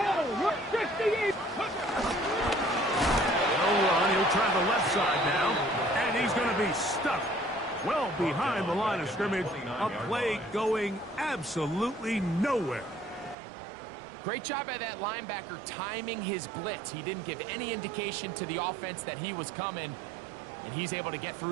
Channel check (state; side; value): drops out; left; at 13.4 s